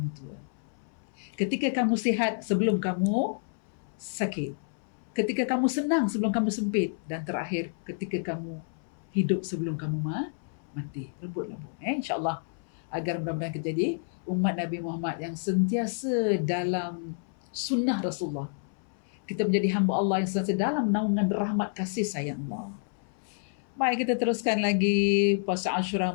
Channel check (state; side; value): silent; right; 58 dB below the other